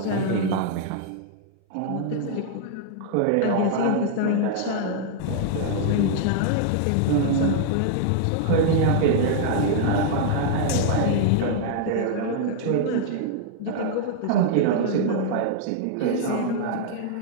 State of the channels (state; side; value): different; both; correlation -0.01